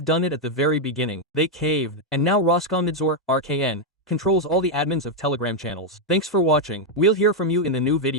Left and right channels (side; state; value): both; normal; correlation 0.01